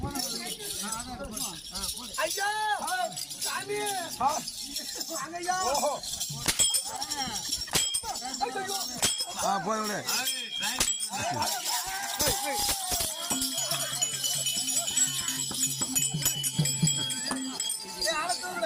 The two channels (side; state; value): both; identical; correlation 1.00